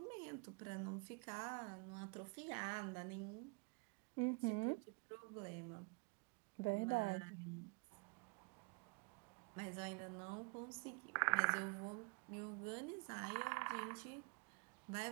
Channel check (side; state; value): left; quieter; 33.0 dB